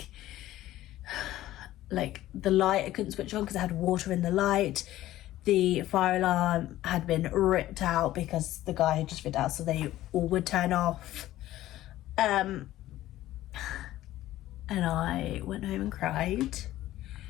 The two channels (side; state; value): right; quieter; 14.8 dB